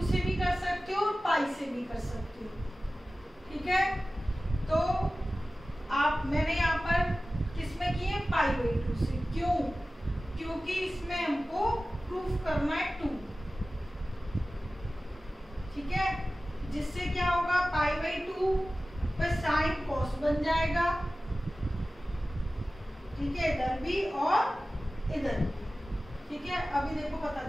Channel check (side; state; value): both; normal; correlation 0.96